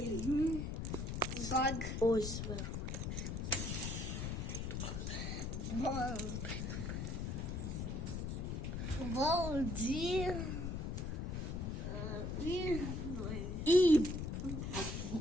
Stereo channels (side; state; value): left; noise; rumble, 2 dB below the sound